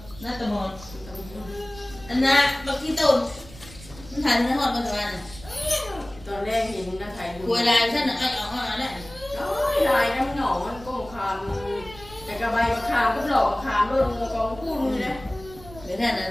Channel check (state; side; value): noise; right; rumble, 18 dB below the sound